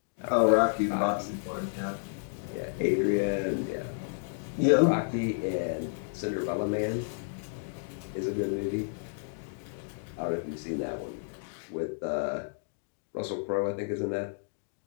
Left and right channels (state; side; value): silent; right; digital silence